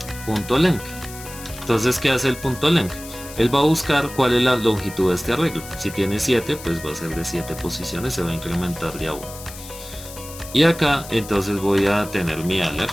punto length. Entonces, ¿qué hace el punto length? Él va a buscar cuál es la longitud de este arreglo. Si tiene 7, pues va a ser de 7 posiciones, se va a incrementar de a 1. Y acá entonces voy a tener mi alert.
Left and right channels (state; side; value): noise; left; hiss, 15 dB below the sound